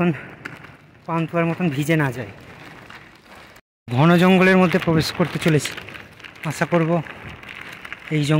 পান্তুয়ার মতন ভিজে না যায়। ঘন জঙ্গলের মধ্যে প্রবেশ করতে চলেছি। আশা করব এই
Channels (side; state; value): both; identical; correlation 1.00